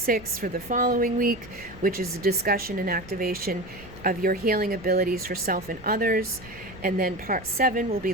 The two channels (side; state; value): right; noise; rumble, 20 dB below the sound